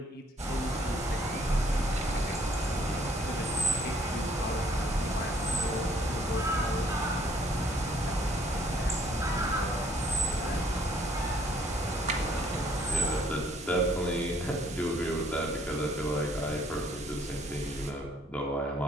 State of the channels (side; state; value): both; normal; correlation 0.62